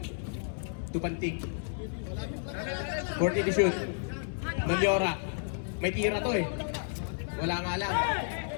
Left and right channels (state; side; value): silent; right; 57 dB below the other